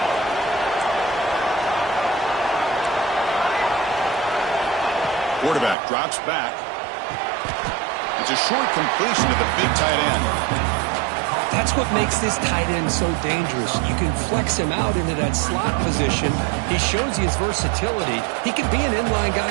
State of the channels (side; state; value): left; drops out; at 5.8 s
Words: Quarterback drops back. It's a short completion to the big tight end. That's what makes this tight end so dangerous. You can flex him out into that slot position. He shows you his versatility. He can be an inline